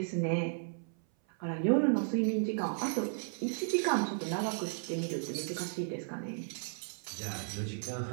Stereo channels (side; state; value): left; silent; 55 dB below the other